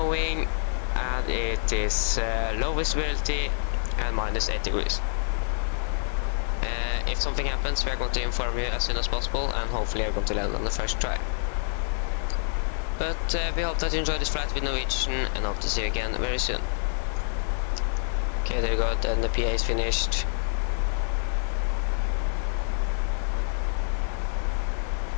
and it is low visibility and minus 8 degrees. If something happens, we are going to inform you as soon as possible, and hopefully you're going to land on the first try. But we hope that you enjoyed this flight with Norwegian, and hope to see you again very soon. Okay, there you go, then the PA is finished.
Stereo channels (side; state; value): right; silent; digital silence